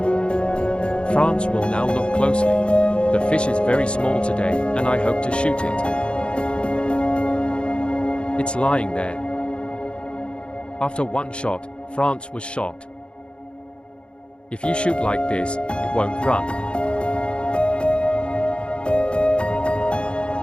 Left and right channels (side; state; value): right; late; 0.056 ms